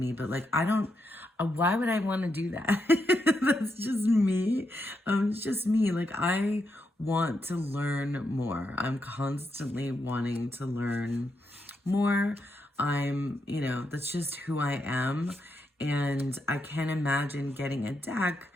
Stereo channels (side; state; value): both; normal; correlation 0.82